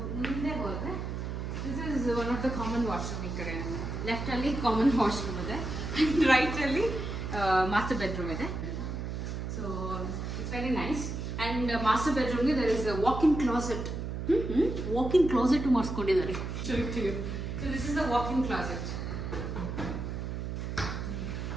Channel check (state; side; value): noise; right; hum, 4 dB below the sound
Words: ಮುಂದೆ ಹೋದರೆ this is one of the common washroom. ಈ ಕಡೆ ಲೆಫ್ಟಲ್ಲಿ ಕಾಮನ್ ವಾಶ್ರೂಮ್ ಇದೆ ಆ್ಯಂಡ್ ರೈಟಲ್ಲಿ ಮಾಸ್ಟರ್ ಬೆಡ್ರೂಮ್ ಇದೆ. So it's very nice. And master ಬೆಡ್ರೂಮ್ಗೆ ದರ್ ಇಸ್ ವಾಕಿಂಗ್ ಕ್ಲಾಸೆಟ್ ಮಾಡಿಸ್ಕೊಂಡಿದ್ದಾರೆ. So this is the walking closet.